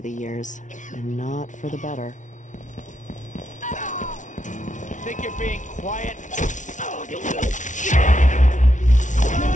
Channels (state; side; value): late; right; 0.37 ms